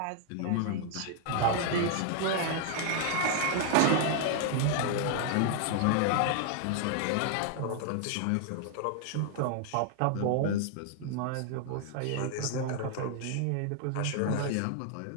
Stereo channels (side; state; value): both; different; correlation 0.00